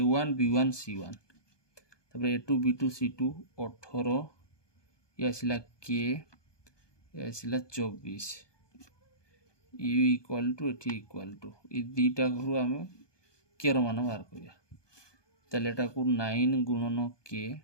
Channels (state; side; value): late; right; 1.2 ms